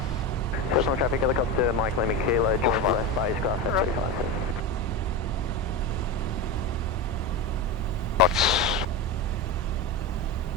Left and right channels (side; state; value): both; normal; correlation 0.19